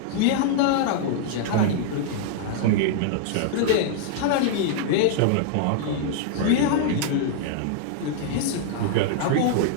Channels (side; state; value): both; different; correlation -0.01